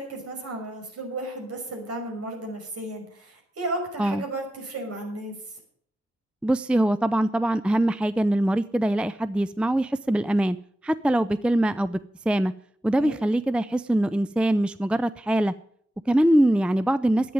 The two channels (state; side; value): normal; both; correlation 0.92